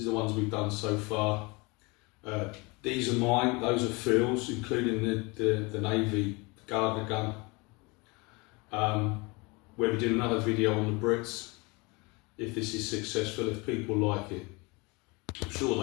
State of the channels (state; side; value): quieter; right; 27.0 dB